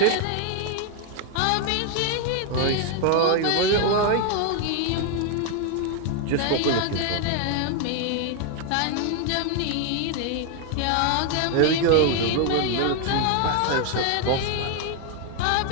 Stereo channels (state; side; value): different; both; correlation 0.01